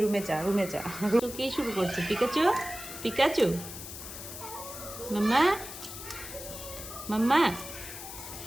রুমে যা, রুমে যা। কে শুরু করছে? পিকাচু, পিকাচু, মাম্মা, মাম্মা।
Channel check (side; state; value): left; noise; hiss, 10 dB below the sound